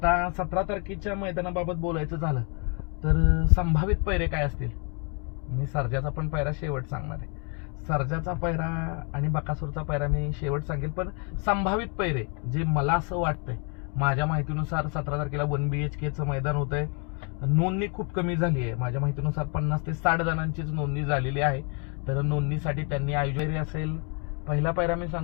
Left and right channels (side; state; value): right; quieter; 36.4 dB